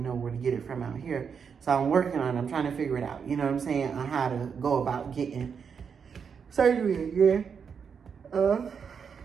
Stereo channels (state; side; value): quieter; left; 6.5 dB